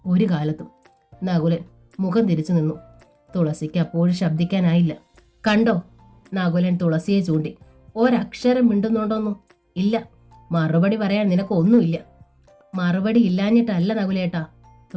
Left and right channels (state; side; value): identical; both; correlation 1.00